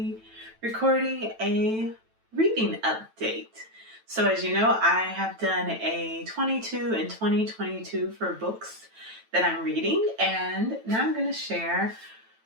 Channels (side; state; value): left; late; 9.1 ms